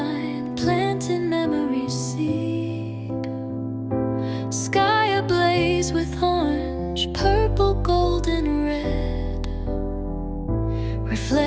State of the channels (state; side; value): identical; both; correlation 1.00